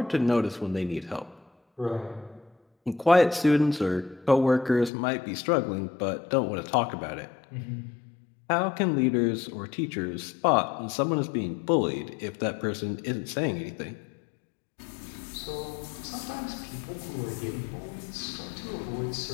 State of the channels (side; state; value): right; drops out; at 4.9 s